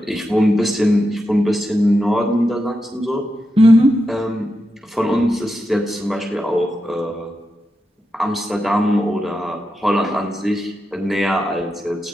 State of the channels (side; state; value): both; normal; correlation 0.88